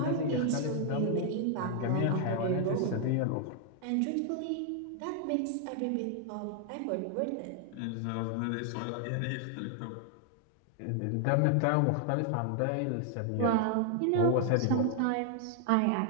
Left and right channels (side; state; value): both; different; correlation 0.00